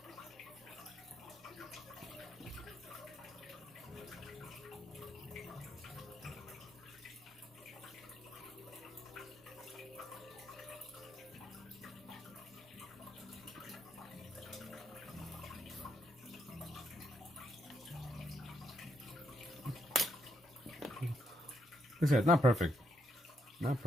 Like I said, not perfect. Not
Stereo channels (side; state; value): both; normal; correlation 0.77